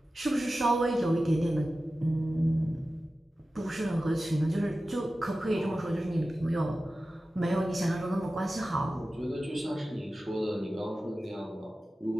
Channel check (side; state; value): both; normal; correlation 0.95